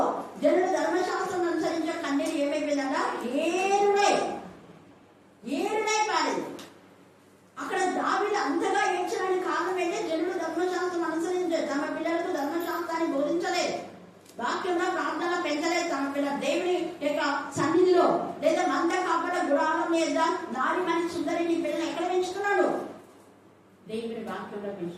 జనులు ధర్మశాస్త్రం అనుసరించే కన్నీరు ఏమైపోయిందంట? ఏరుడై పారేది. అక్కడ దావీదు అంతగా ఏడ్చడానికి కారణం ఏంటంటే, జనులు ధర్మశాస్త్రం అనుసరించారు, తమ పిల్లలకు ధర్మశాస్త్రాన్ని బోధించలేదు, వాక్యంలో ప్రార్థన పెంచలేదు. తమ పిల్లల దేవుని యొక్క సన్నిధిలో లేదా మంద కాపడ గుడారం మీద నారి మని సుందరిని పిల్లలు ఎక్కడ పెంచుతున్నాడు? దేవుని వాక్యంలో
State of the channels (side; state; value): both; identical; correlation 1.00